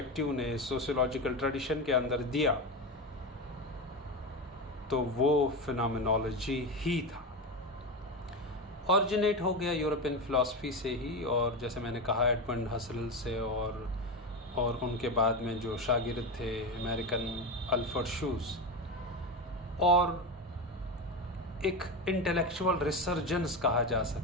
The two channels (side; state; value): both; normal; correlation 0.19